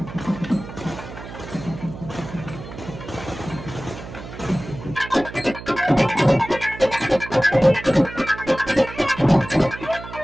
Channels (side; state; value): right; noise; hum, 13 dB below the sound